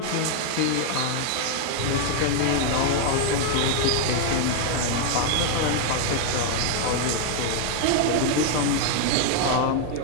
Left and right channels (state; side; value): different; both; correlation 0.00